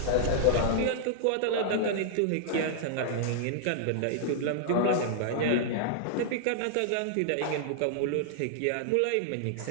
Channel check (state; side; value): different; both; correlation -0.01